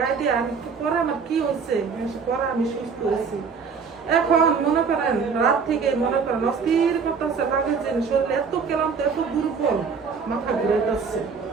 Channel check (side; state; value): left; quieter; 5.6 dB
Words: দিয়ে আমি একটু পরে আমার কি হয়েছে পরে আমি সুস্থ হয়েছি। এখন মনে করেন রাত থেকে মনে করেন অস্থির করতেছে, লাগে যে শরীর এত ক্লান্ত এত দুর্বল, মাথা ঘুরে যাচ্ছে।